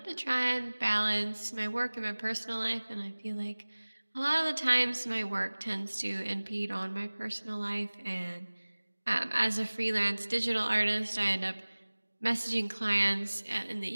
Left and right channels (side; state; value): both; inverted; correlation -1.00